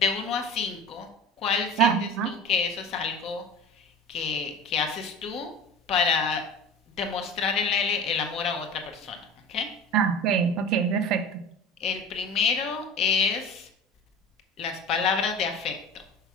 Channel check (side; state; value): both; normal; correlation 0.36